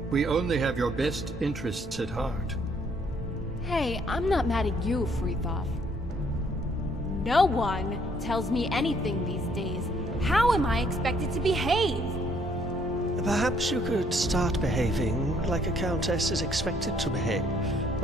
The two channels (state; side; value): normal; both; correlation 0.66